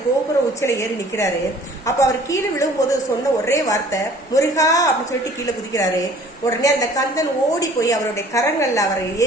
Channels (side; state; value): both; normal; correlation 0.52